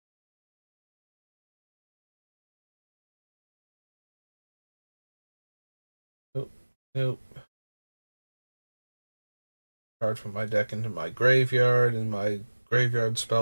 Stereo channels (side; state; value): both; inverted; correlation -1.00